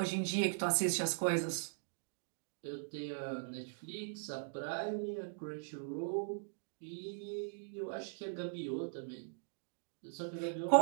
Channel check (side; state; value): left; silent; digital silence